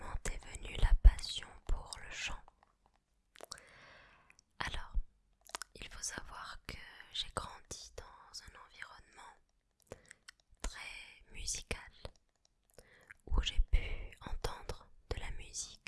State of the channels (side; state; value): both; identical; correlation 1.00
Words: est venue la passion pour le chant? Alors, il faut savoir que j'ai grandi dans un environnement très musical où j'ai pu entendre de la